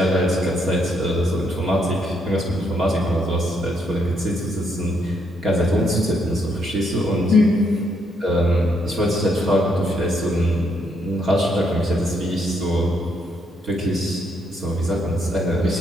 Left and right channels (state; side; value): normal; both; correlation 0.75